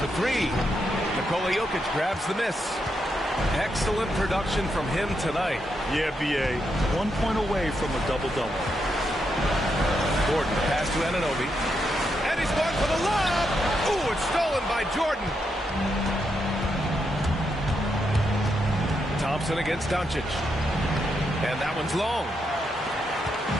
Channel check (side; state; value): both; normal; correlation 0.82